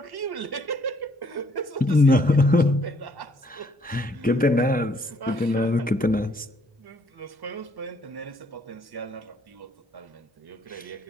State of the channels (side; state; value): both; normal; correlation 0.66